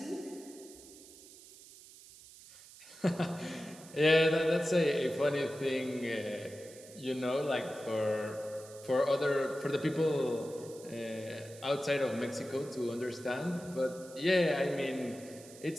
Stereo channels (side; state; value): right; noise; hiss, 19 dB below the sound